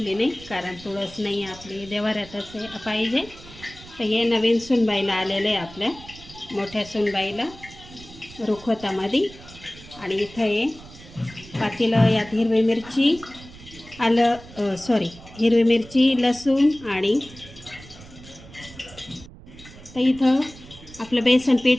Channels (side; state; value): right; noise; rumble, 19 dB below the sound